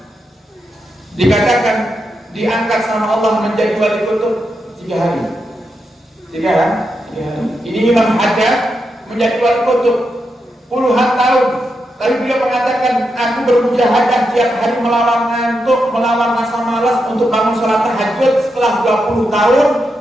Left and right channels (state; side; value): normal; both; correlation 0.85